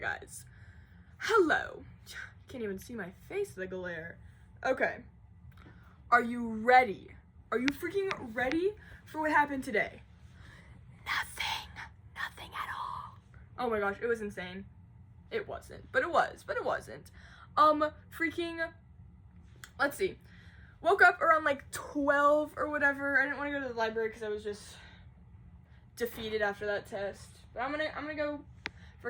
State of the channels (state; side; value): identical; both; correlation 1.00